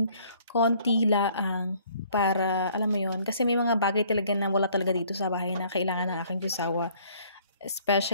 konti laang para, alam mo yun. Kasi may mga bagay talaga na wala talaga dito sa bahay na kailangan ng aking asawa.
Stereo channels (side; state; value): both; inverted; correlation -0.59